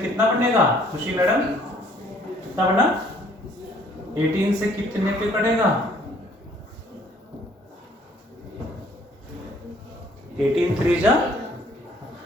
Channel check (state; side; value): normal; both; correlation 0.60